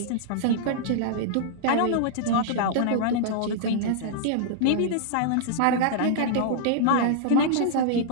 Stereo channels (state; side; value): different; both; correlation -0.02